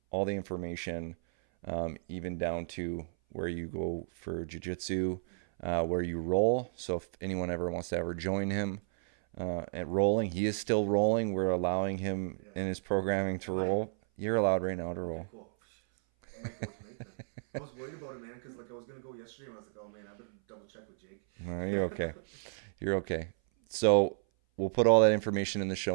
all the information, even down to where you go for jiu-jitsu, where you roll. So if anyone ever wants to ever join him at rolling, he is still rolling. We're allowing him in his programming to roll. You're allowed right now to roll. Okay, cool. I might go tonight then. I was worried about it, man, because I was going to go yesterday, and I was like, oh, man, I better double check with Jake. No, you're okay. You're okay. So we'll put all that information in the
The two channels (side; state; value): left; silent; 56 dB below the other